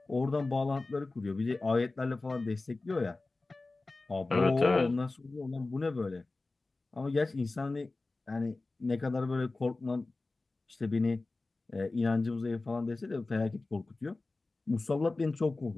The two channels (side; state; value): right; quieter; 3.3 dB